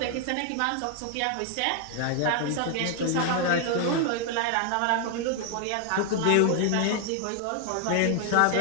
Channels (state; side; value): different; both; correlation 0.00